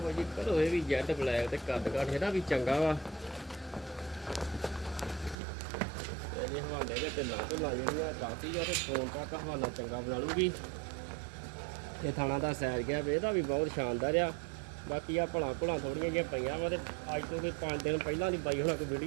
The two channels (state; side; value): drops out; left; at 5.4 s